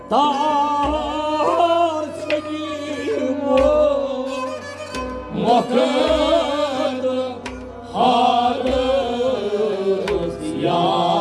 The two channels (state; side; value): identical; both; correlation 1.00